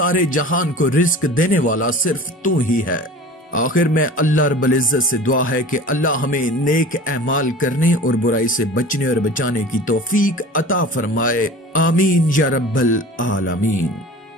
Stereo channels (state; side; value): normal; both; correlation 0.39